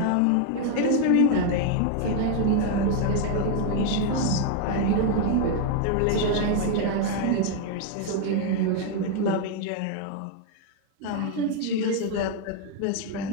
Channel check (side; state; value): both; different; correlation 0.01